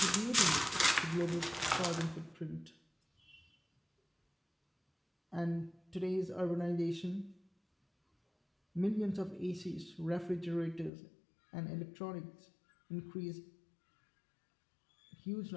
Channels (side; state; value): right; drops out; at 10.9 s